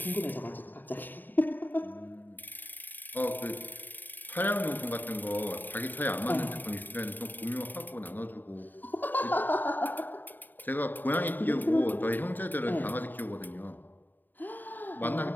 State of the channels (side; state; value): right; late; 0.090 ms